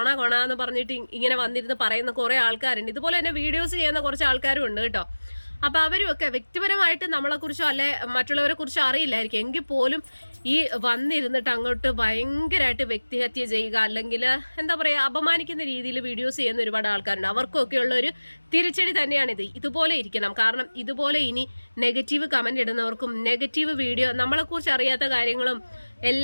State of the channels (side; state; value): both; inverted; correlation -1.00